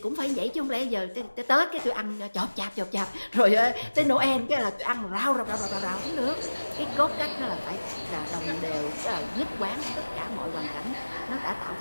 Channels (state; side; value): inverted; both; correlation -1.00